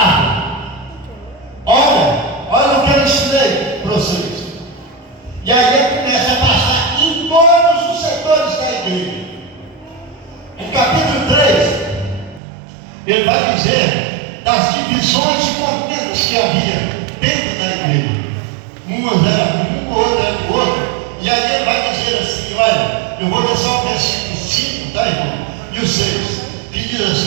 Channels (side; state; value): left; drops out; at 12.4 s